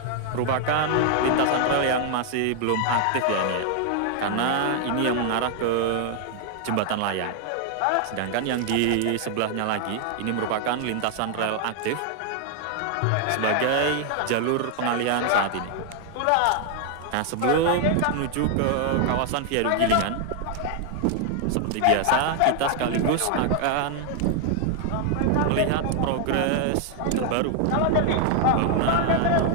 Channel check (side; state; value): both; different; correlation 0.00